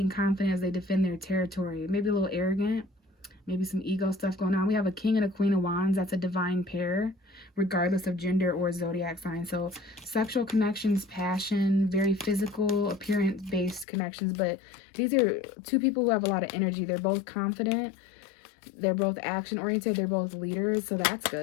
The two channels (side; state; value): right; drops out; at 13.9 s